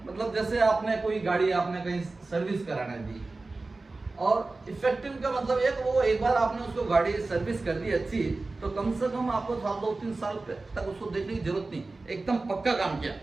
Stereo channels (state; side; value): quieter; left; 3.4 dB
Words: मतलब जैसे आपने कोई गाड़ी आपने कहीं सर्विस कराने दी, और इफेक्टिव का मतलब एक बार आपने उसको गाड़ी सर्विस कर दी अच्छी, तो कम से कम आपको 2-3 साल तक उसको देखने की जरूरत नहीं, एकदम पक्का काम किया,